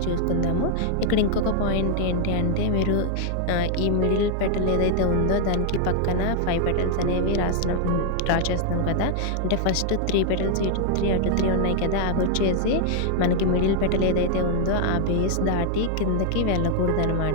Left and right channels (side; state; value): both; different; correlation 0.00